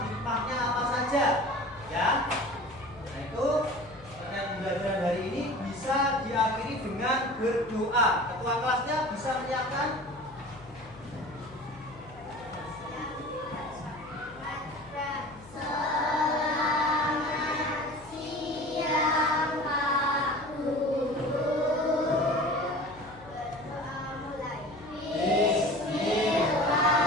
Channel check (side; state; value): left; noise; hum, 21 dB below the sound